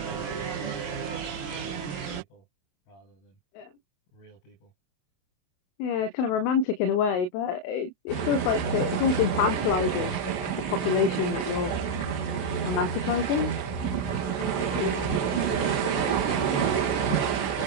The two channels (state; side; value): late; right; 28 ms